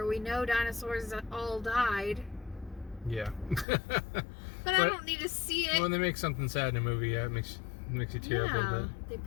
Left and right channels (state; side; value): drops out; right; at 3.7 s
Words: we know dinosaurs all died. Yeah. but I don't need to see it. When they make something sad in a movie, it makes you tear up a little bit. They